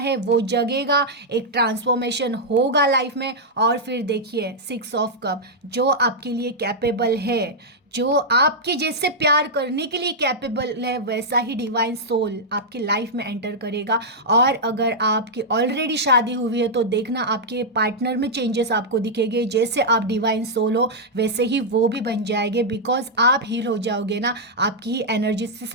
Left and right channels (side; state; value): both; normal; correlation -0.06